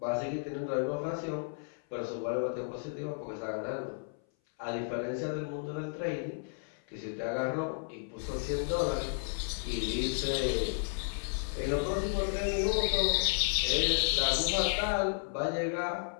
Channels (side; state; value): right; silent; 56 dB below the other